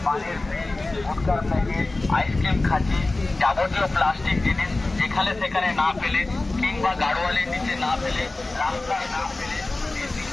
পানির fridge, গুটখার packet, ice cream খাঁচি, যাবতীয় প্লাস্টিক জিনিস যেখানে সেখানে না ফেলে কিংবা গাড়োয়ালের নিচে না ফেলে, রাস্তায় না ফেলে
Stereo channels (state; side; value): quieter; right; 3.1 dB